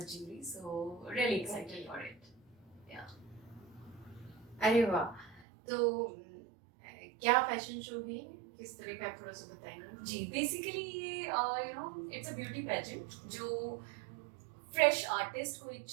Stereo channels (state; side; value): drops out; left; at 5.5 s